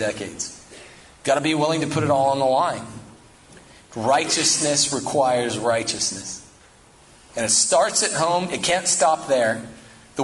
Got to be willing to put it all on the line. Righteousness requires righteousness. And it starts at home. It can't stop there, the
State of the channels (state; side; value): identical; both; correlation 1.00